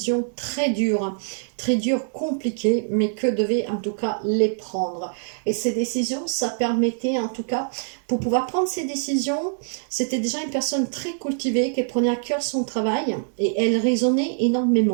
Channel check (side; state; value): left; silent; digital silence